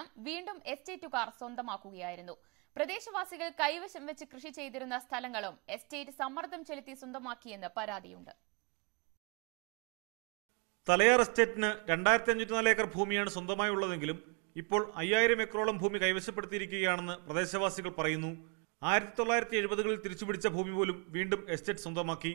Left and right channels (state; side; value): quieter; left; 35.1 dB